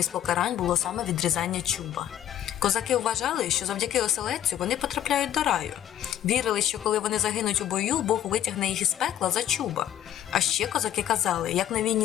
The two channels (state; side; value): quieter; right; 11.3 dB